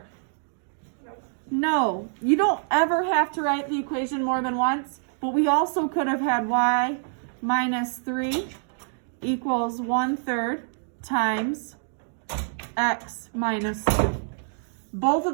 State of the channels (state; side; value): silent; left; digital silence